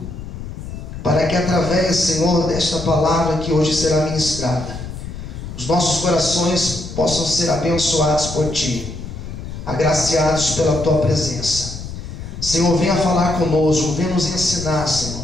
para que através, Senhor, desta palavra que hoje será ministrada, os nossos corações possam ser abençoados por Ti, agraciados pela Tua presença. Senhor, venha falar conosco, venha nos ensinar, Senhor,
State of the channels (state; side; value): noise; left; rumble, 9 dB below the sound